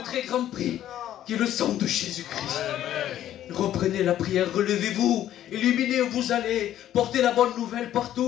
très grand prix, qui est le sang de Jésus-Christ. Reprenez la prière, relevez-vous, illuminez où vous allez, portez la bonne nouvelle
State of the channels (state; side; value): quieter; right; 12.0 dB